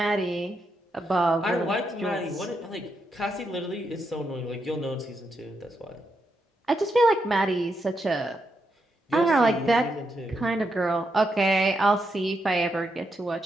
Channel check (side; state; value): both; normal; correlation 0.82